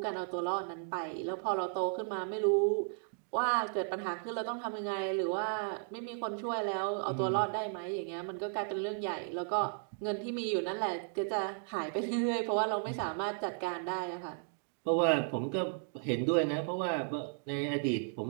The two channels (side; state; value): left; silent; 55 dB below the other